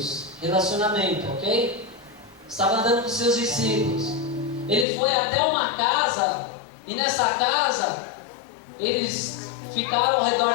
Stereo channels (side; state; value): right; drops out; at 4.9 s